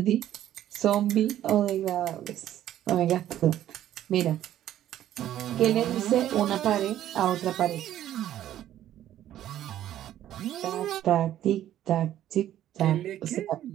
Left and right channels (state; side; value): quieter; left; 12.1 dB